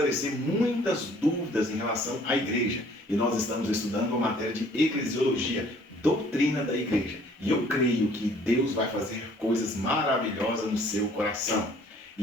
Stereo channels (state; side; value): normal; both; correlation 0.57